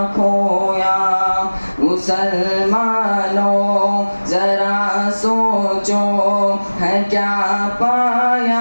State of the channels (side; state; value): both; inverted; correlation -1.00